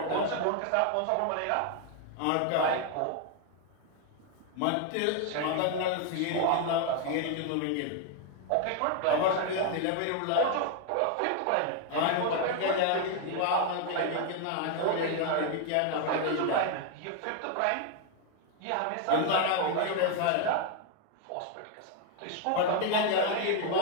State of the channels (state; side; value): different; both; correlation 0.01